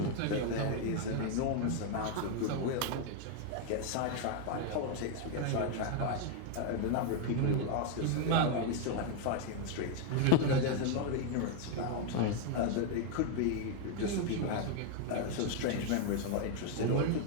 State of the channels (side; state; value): both; different; correlation 0.00